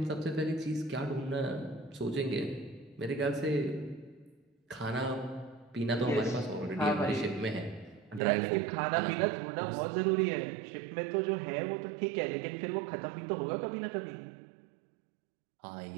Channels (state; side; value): drops out; left; at 8.2 s